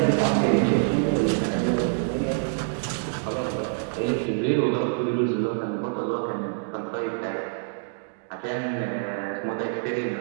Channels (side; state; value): left; silent; digital silence